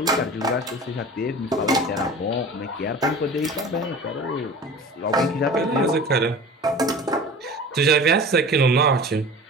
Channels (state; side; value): normal; both; correlation 0.38